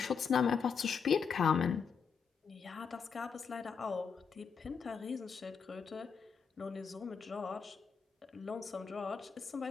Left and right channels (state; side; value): quieter; right; 6.2 dB